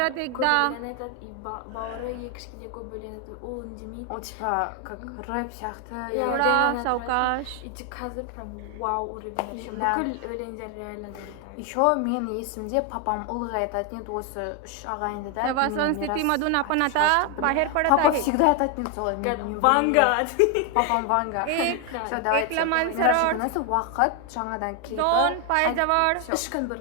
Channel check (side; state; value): both; different; correlation 0.01